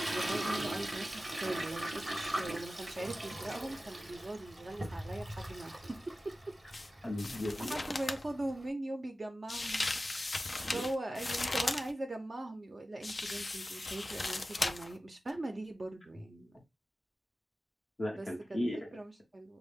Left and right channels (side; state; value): both; normal; correlation 0.95